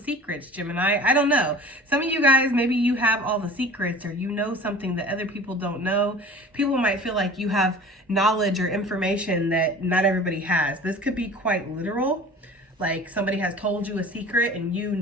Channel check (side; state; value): both; normal; correlation 0.42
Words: Gemini. I don't know. Some of you guys, maybe you have all the secrets, or you know something that other people don't know. People might feel like you have knowledge or information that not everybody has. This could be quite literal. Like, somebody has told you a secret and you